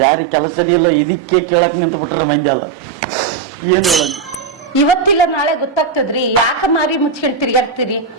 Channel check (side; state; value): left; quieter; 5.7 dB